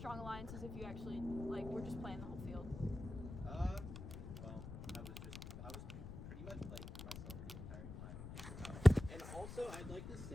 alliances if you actually like were just playing the whole field? Well, I was pretty much playing for myself the entire time. And also, I'd like to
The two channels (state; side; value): noise; left; rumble, 9 dB below the sound